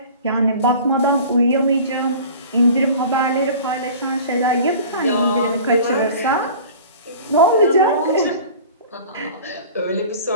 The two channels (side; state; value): both; inverted; correlation -0.41